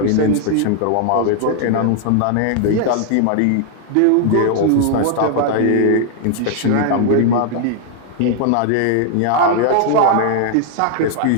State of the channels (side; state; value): both; different; correlation 0.00